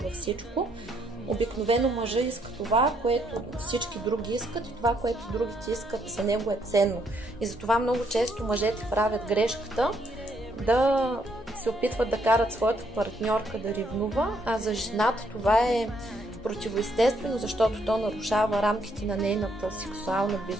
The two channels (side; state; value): both; normal; correlation 0.72